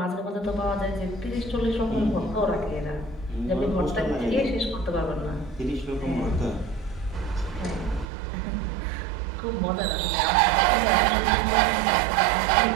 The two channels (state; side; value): drops out; left; at 8.1 s